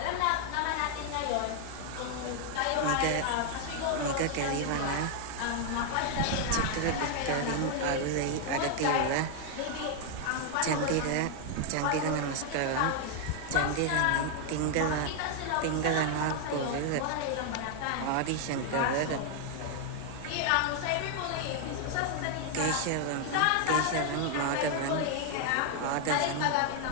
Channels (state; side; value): different; both; correlation 0.00